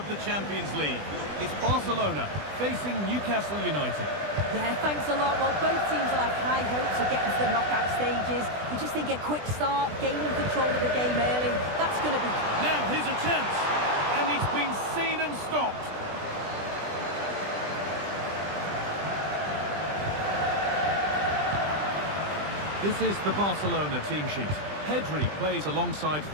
the Champions League. It's Barcelona facing Newcastle United. Yeah, thanks a lot. Well, both teams will have high hopes of getting to the knockout stages. You just think a quick start, gaining control of the game early, that's going to be... Now, here's a chance, and it's been seen and stopped. This is the Barcelona team sheet. Pedri plays alongside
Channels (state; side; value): late; left; 20 ms